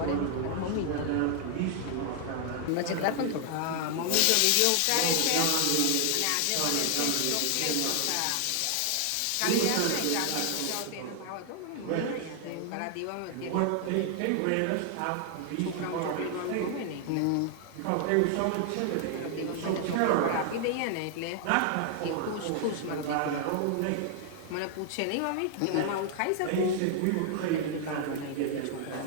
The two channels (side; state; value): both; different; correlation 0.00